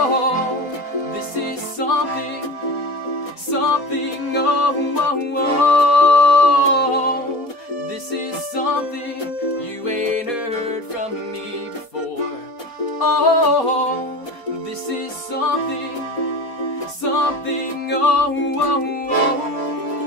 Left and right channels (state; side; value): late; right; 4.2 ms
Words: this is something, this is something you ain't heard from me before. Oh, this is something,